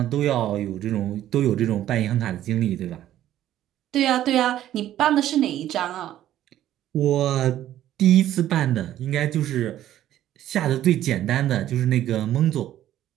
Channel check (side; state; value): left; quieter; 12.5 dB